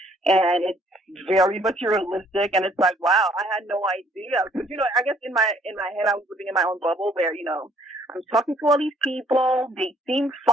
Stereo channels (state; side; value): normal; both; correlation 0.62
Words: and it's very materialistic, and it's like, wow, I had no idea. Because, I guess in my head, I was living in my own bubble where, I'm talking to all these people, they seem